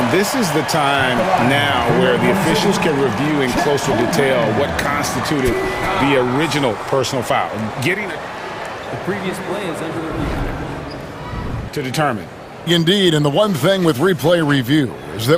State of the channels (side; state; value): both; identical; correlation 1.00